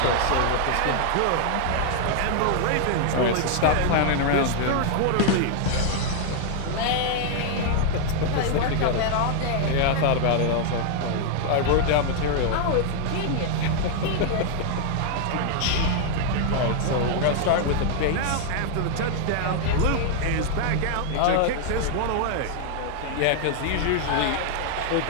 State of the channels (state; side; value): different; both; correlation 0.00